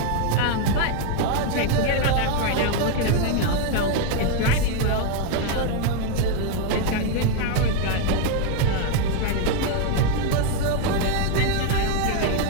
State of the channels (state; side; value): different; both; correlation 0.00